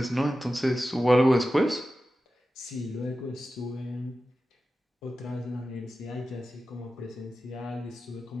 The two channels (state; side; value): normal; both; correlation 0.93